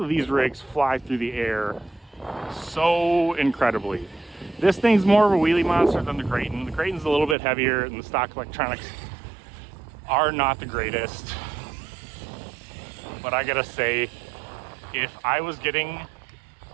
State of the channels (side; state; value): left; drops out; at 7.4 s